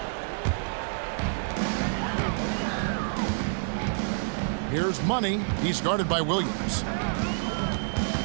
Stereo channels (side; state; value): left; silent; digital silence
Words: Here's Money. He's guarded by Williams.